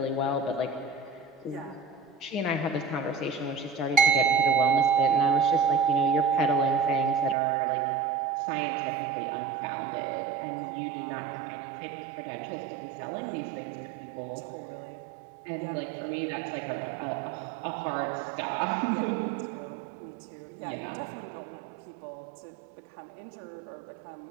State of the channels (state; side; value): drops out; left; at 7.4 s